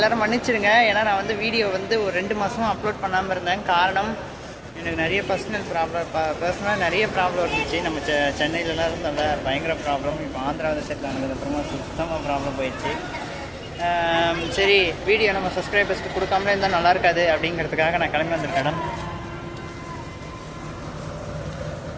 மன்னிச்சிடுங்க. ஏன்னா நான் வந்து வீடியோ வந்து ஒரு 2 மாதமாக அப்லோட் பண்ணாமல் இருந்தேன். காரணம் எனக்கு நிறைய பர்சனலாக நிறைய ப்ராப்ளம் இருந்துச்சு. நம்ம சென்னையிலலாம் இருந்தோம்ல, பயங்கர ப்ராப்ளம். இப்போ ஆந்திராவில் செட்டில் ஆனதுக்கப்புறமா சுத்தமாக ப்ராப்ளம் போயிடுச்சு. சரி, வீடியோ நம்ம சப்ஸ்கிரைபர்ஸ்க்கு கொடுக்காமலே இருந்தால் நல்லா இருக்காது அப்படிங்கிறதுக்காக நான் கிளம்பி வந்திருக்கேன். இடம்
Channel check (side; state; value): both; identical; correlation 1.00